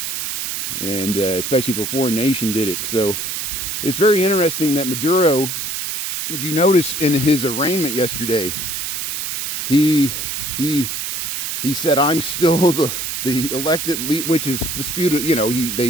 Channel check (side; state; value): right; noise; hiss, 3 dB below the sound